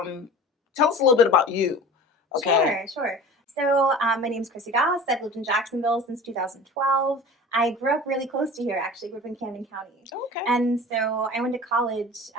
a little bit about you. Okay. Sure. So my name is Chrissy Doss. I've lived in Jacksonville since 2012. I grew up really close to here, actually. Grew up in Camden County. Okay. And so I went to college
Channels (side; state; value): both; normal; correlation 0.39